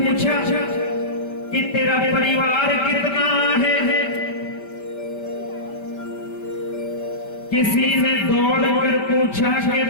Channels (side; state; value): right; late; 5.1 ms